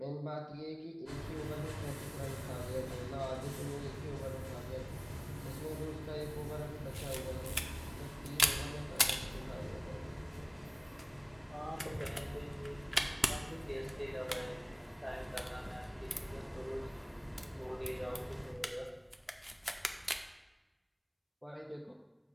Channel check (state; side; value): identical; both; correlation 1.00